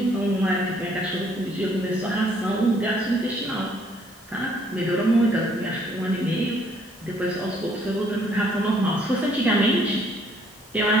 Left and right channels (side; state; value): both; normal; correlation 0.65